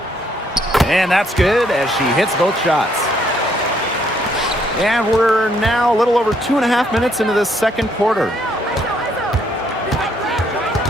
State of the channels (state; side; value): normal; both; correlation 0.70